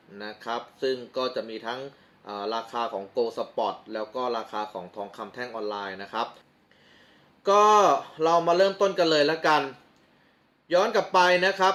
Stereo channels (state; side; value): identical; both; correlation 1.00